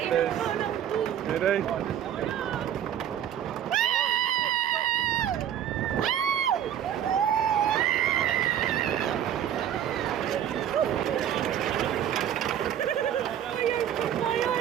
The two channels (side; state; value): left; quieter; 10.2 dB